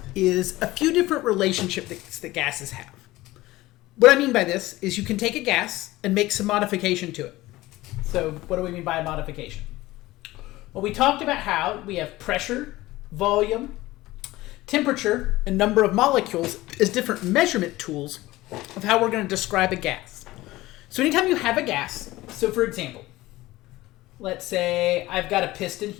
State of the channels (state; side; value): quieter; right; 18.1 dB